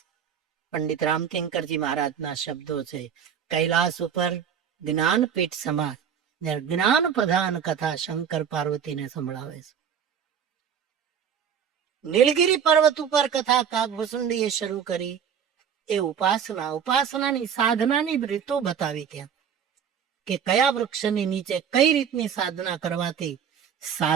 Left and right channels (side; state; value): left; quieter; 8.0 dB